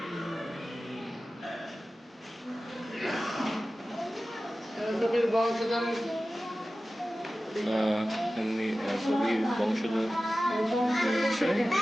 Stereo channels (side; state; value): both; normal; correlation 0.95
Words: এমনি কবির বংশধর